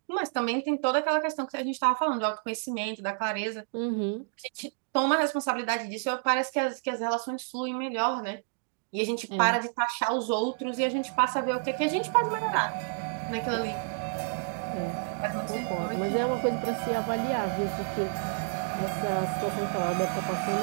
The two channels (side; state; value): left; silent; digital silence